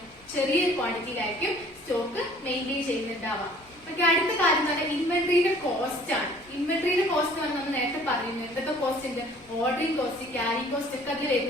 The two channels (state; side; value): normal; both; correlation 0.53